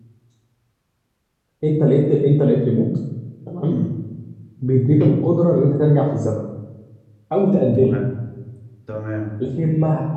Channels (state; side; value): identical; both; correlation 1.00